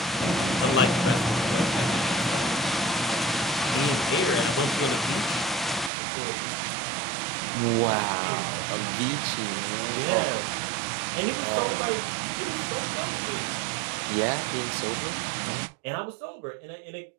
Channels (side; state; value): left; drops out; at 5.9 s